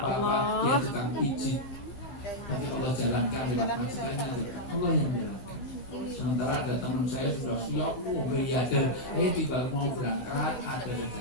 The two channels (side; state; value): right; late; 16 ms